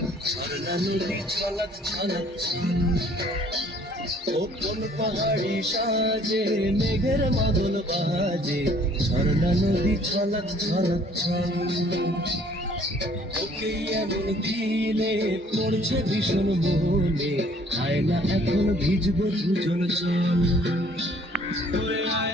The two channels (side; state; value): both; normal; correlation 0.58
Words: ঝর্ণা নদী ছলক ছলক ছল। ও কোন পাহাড়ি সাজে মেঘের মাদল বাজে, ঝর্ণা নদী ছলক ছলক ছল। ওকে এমন দিনে পড়ছে ভীষণ মনে, আয়না এখন ভিজবো দুজন চল। ওরে